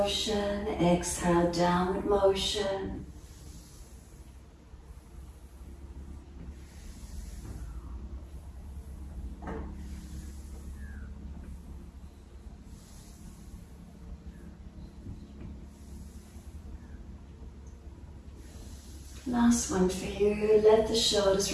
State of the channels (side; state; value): both; identical; correlation 1.00